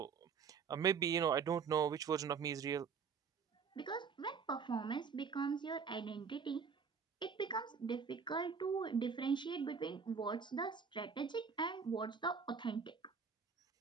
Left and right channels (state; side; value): quieter; left; 6.0 dB